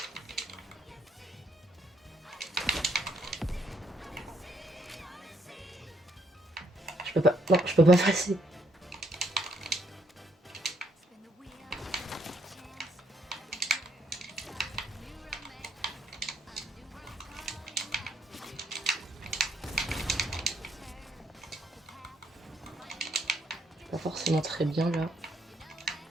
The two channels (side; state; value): both; normal; correlation 0.72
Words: Je peux pas. Non, je peux pas passer. Pas forcément très bien là.